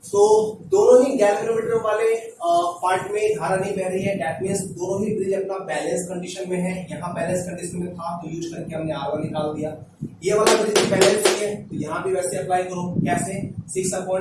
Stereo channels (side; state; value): both; identical; correlation 1.00